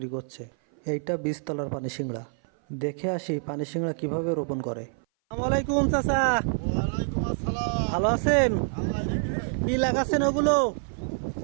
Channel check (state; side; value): silent; left; 57 dB below the other